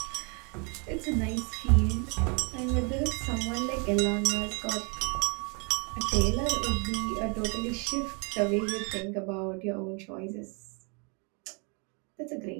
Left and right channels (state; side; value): quieter; left; 34.5 dB